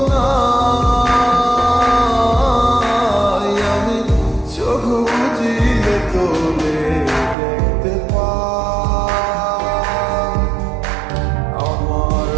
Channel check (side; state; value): left; drops out; at 7.4 s